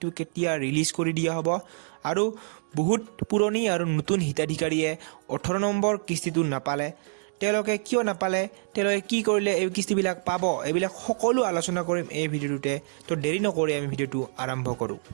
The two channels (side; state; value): left; silent; digital silence